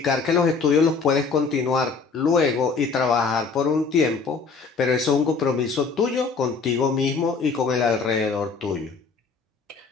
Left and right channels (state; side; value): quieter; right; 4.7 dB